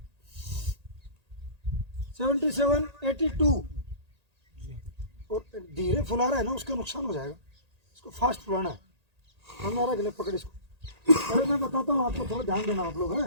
77, 82 और धीरे फुला रहा है ना, उसका नुकसान हो जाएगा, इसको फास्ट फुलाना है। हमारा गले पकड़ इसको। अरे मैं बताता हूँ आपको, थोड़ा ध्यान देना आप लोग,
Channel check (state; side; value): late; left; 1.8 ms